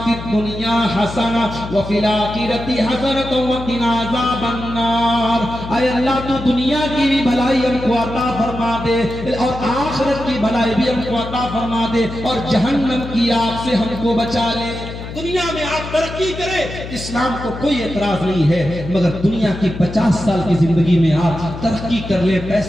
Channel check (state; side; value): noise; left; hum, 10 dB below the sound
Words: फिद दुनिया हसना व फिल आखिरति हसनत व क़िना अज़ाबन्नार। ऐ अल्लाह तू दुनिया की भी भलाई हमको अता फरमा दे और आखिरत की भलाई भी हमको अता फरमा दे और जहन्नम की आग से हमको बचा ले। दुनिया में आप तरक्की करें, इस्लाम को कोई एतराज नहीं है, मगर दुनिया की 50 साल की जिंदगी में आप तरक्की कर ले,